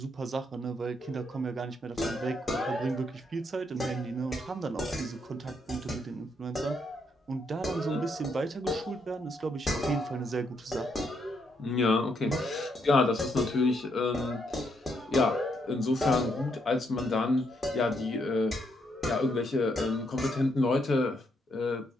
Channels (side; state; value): both; normal; correlation 0.76